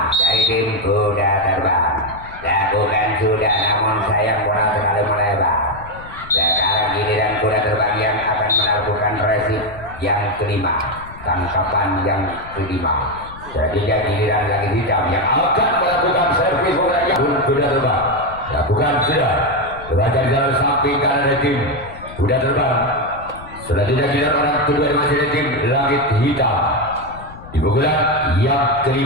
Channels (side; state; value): left; noise; rumble, 17 dB below the sound